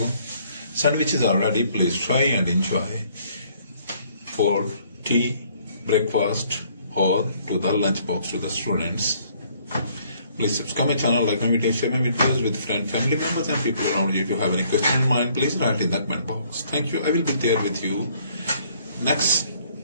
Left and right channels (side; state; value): both; inverted; correlation -0.63